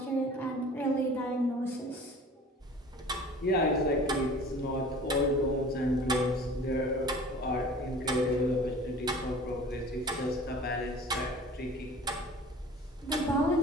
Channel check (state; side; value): normal; both; correlation 0.44